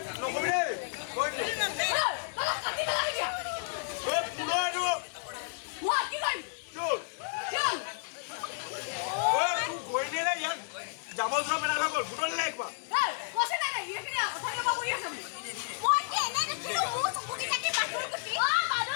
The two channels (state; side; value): silent; right; digital silence